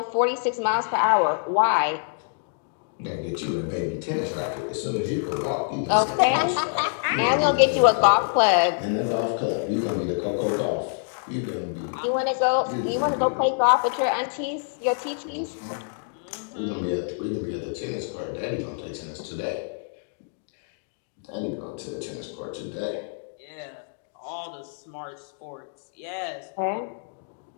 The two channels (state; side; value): silent; right; digital silence